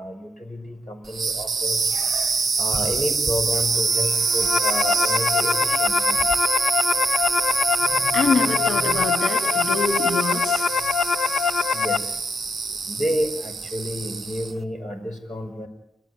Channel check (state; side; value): normal; both; correlation 0.76